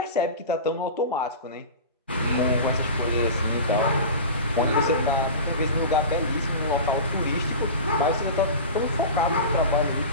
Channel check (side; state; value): both; inverted; correlation -0.31